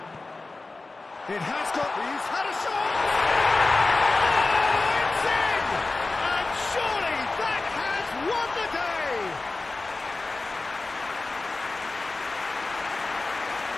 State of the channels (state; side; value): quieter; right; 3.4 dB